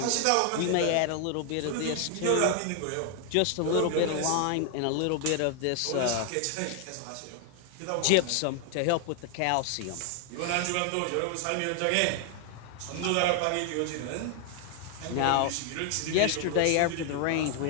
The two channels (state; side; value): different; both; correlation 0.00